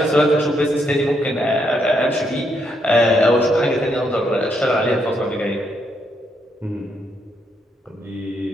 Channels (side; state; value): both; normal; correlation 0.76